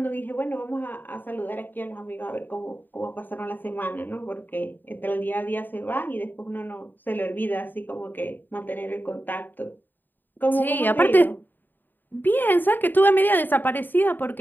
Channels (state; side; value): late; right; 0.091 ms